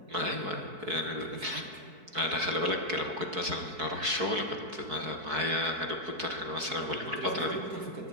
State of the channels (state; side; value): late; left; 4.6 ms